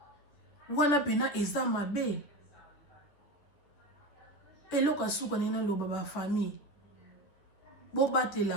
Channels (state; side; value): late; right; 10 ms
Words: wana pena eza mabe eloka suka nena loba ba famille bo